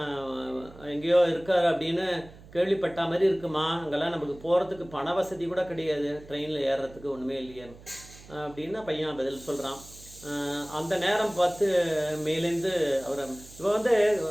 எங்கேயோ இருக்கார் அப்படின்னு கேள்விப்பட்ட மாதிரி இருக்குமா, அங்கெல்லாம் நமக்கு போகிறதுக்கு பண வசதி கூட கிடையாது, ட்ரெயினில் ஏறுறதுக்கு ஒன்றுமே இல்லையே அப்படின்னு பையன் பதில் சொல்கிறான். அந்த நேரம் பார்த்து மேலேருந்து அவர் இப்போ வந்து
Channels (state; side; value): noise; right; hum, 20 dB below the sound